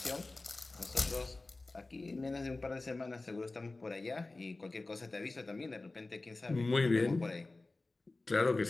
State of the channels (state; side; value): quieter; right; 3.2 dB